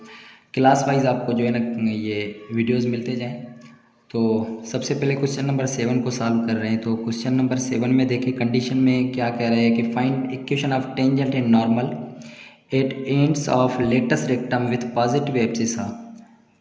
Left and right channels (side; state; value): both; identical; correlation 1.00